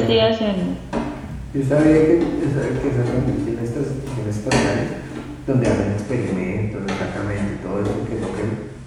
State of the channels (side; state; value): both; identical; correlation 1.00